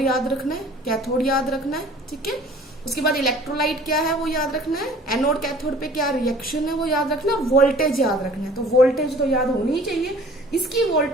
याद रखना है, कैथोड याद रखना है, ठीक है। उसके बाद इलेक्ट्रोलाइट क्या है वो याद रखना है, एनोड कैथोड पे क्या रिएक्शन है वो याद रखना है, वोल्टेज याद रखना है। तो वोल्टेज तो याद होनी ही चाहिए। इसकी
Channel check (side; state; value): both; normal; correlation 0.49